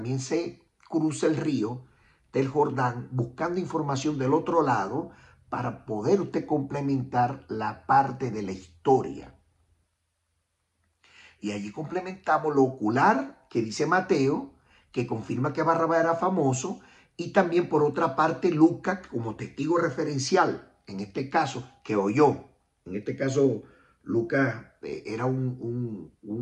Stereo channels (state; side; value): identical; both; correlation 1.00